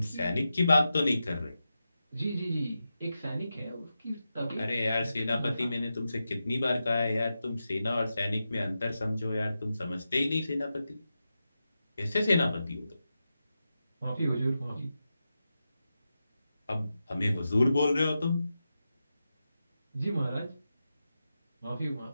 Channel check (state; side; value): inverted; both; correlation -0.90